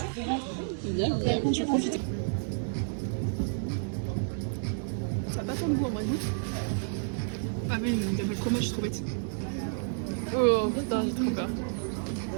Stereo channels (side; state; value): left; silent; 58 dB below the other